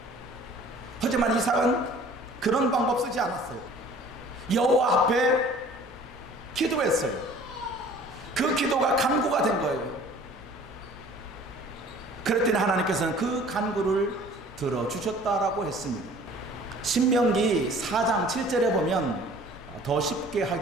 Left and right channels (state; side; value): normal; both; correlation 0.50